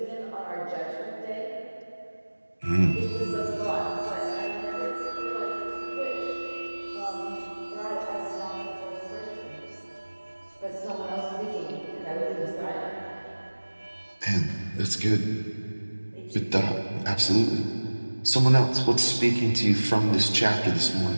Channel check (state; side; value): inverted; both; correlation -1.00